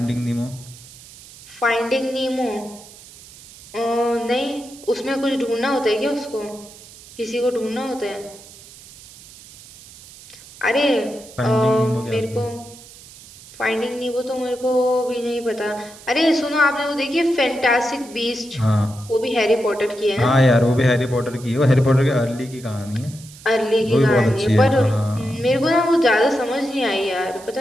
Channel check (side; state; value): right; noise; hiss, 20 dB below the sound